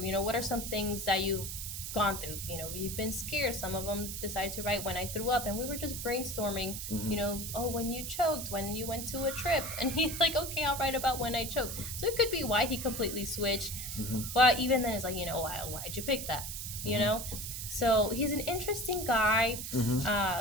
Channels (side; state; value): right; noise; hiss, 6 dB below the sound